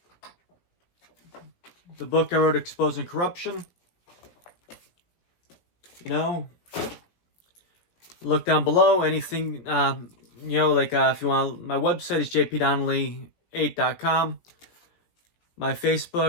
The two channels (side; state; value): right; late; 17 ms